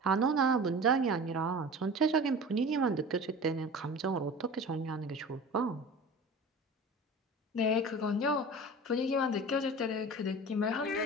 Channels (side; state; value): both; normal; correlation 0.37